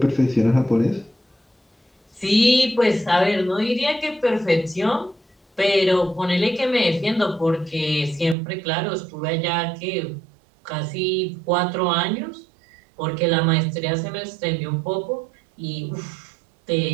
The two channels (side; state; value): left; drops out; at 8.3 s